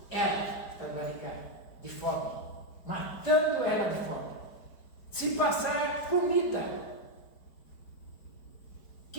ela, está barrigada, de fome. Matando ela de fome. Se passar comida,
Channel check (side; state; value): right; late; 4.9 ms